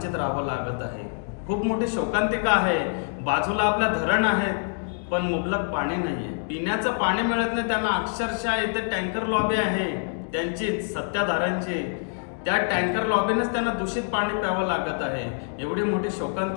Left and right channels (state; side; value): silent; right; 61 dB below the other